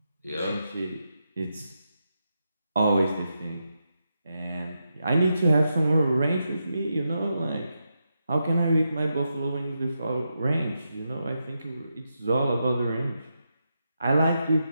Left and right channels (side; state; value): both; inverted; correlation -0.85